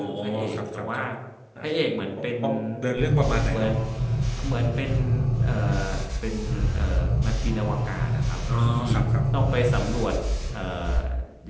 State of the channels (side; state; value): both; identical; correlation 1.00